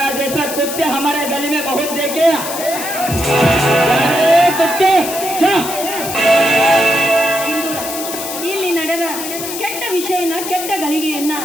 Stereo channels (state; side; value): noise; left; hiss, 7 dB below the sound